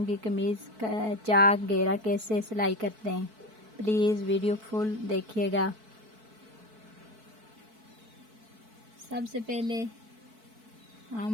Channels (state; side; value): late; left; 4.6 ms